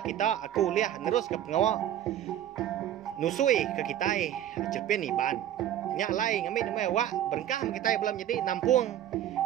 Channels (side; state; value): left; quieter; 11.4 dB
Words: aku liah terus ke pengawa nusui ke kita cerpen iban nya lain ngambil nama wa berkah kita belum jadi nampung